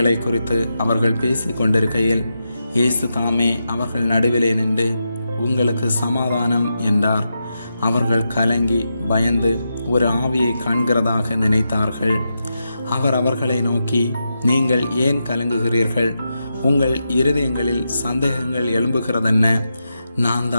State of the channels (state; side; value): inverted; both; correlation -0.87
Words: குறித்து அவர்கள் பேசி கொண்டிருக்கையில் இயேசு தாமே அவர்கள் நடுவிலே நின்று, உங்களுக்கு சமாதானம் என்றார். அவர்கள் கலங்கி பயந்து ஒரு ஆவியை காண்கிறதாக நினைத்தார்கள். அவர் அவர்களை நோக்கி, நீங்கள் ஏன் கலங்குகிறீர்கள்? உங்கள் இருதயங்களில் சந்தேகங்கள் எழும்புகிறதென்ன? நான்